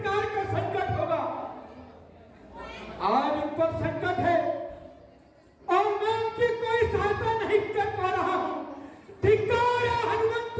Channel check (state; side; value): identical; both; correlation 1.00